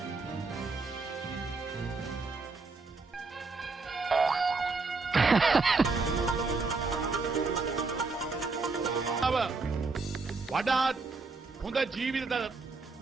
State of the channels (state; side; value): quieter; left; 4.0 dB